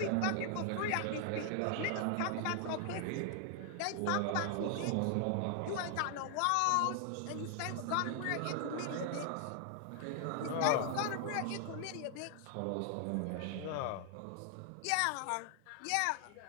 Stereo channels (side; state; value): both; different; correlation 0.00